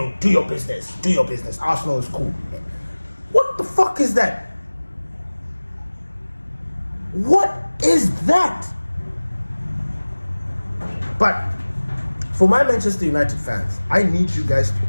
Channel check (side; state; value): both; inverted; correlation -1.00